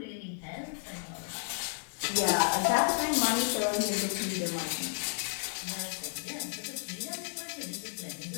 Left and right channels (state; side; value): silent; right; digital silence